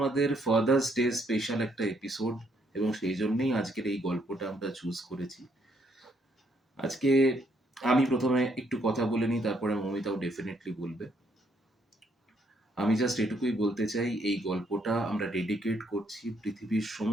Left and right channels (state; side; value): normal; both; correlation 0.71